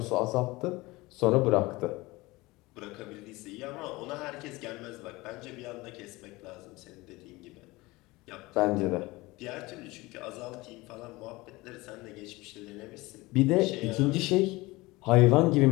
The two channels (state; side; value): quieter; right; 21.5 dB